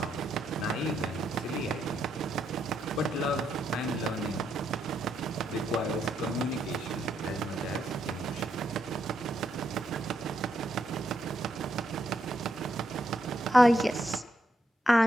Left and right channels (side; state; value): both; normal; correlation 0.78